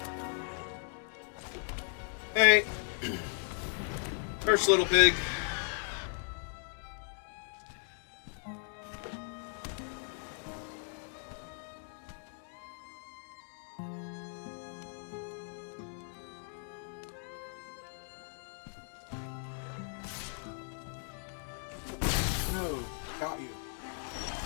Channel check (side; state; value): right; silent; 53 dB below the other